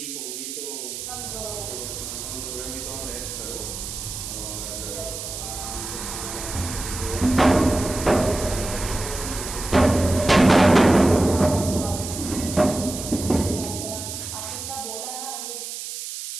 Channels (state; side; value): noise; right; hiss, 7 dB below the sound